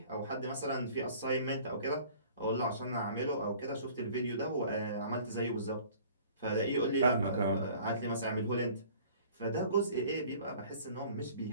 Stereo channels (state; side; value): inverted; both; correlation -0.50